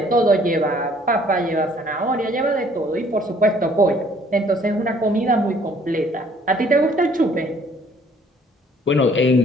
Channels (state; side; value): normal; both; correlation 0.59